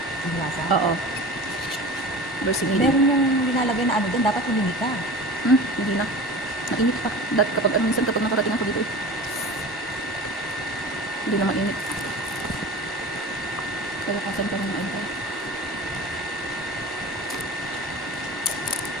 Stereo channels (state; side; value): normal; both; correlation 0.35